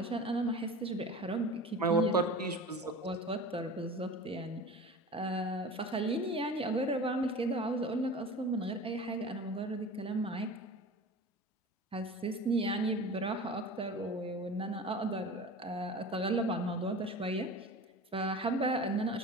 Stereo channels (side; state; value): both; normal; correlation 0.36